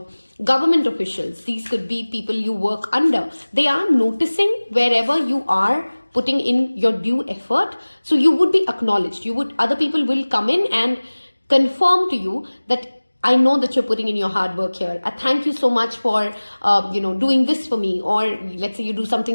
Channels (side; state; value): both; inverted; correlation -1.00